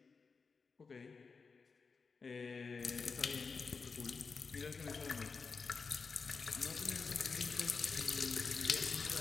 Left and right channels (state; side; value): quieter; right; 4.9 dB